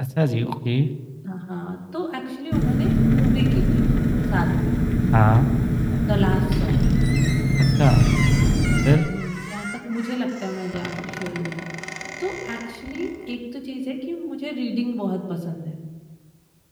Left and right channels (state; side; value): identical; both; correlation 1.00